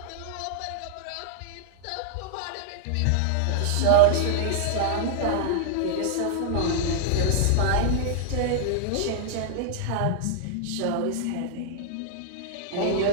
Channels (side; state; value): both; different; correlation -0.01